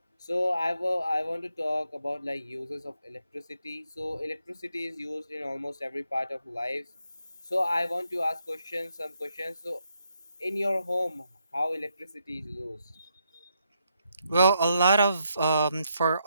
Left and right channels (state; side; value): inverted; both; correlation -0.79